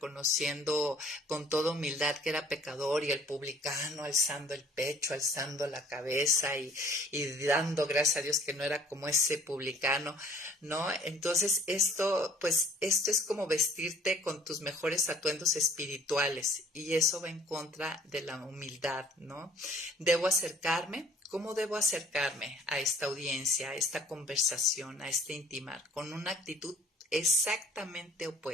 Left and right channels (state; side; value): normal; both; correlation 0.55